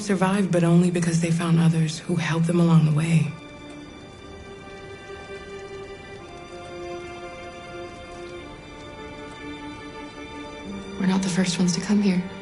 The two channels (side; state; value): both; identical; correlation 1.00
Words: but only because they found others who helped them along the way. We're not the first ones to come here.